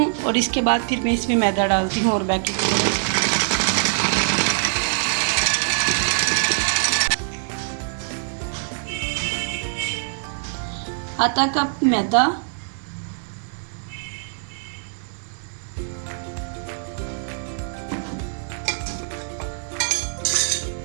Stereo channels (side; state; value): left; silent; digital silence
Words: और इसके बाद फिर मैं इसमें मैदा डालती हूँ और बेकिंग पाउडर। आधा कप मैदा,